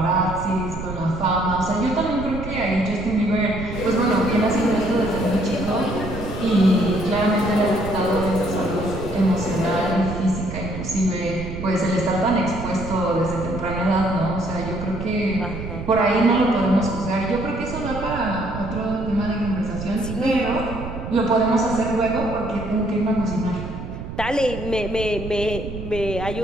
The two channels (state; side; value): noise; right; rumble, 8 dB below the sound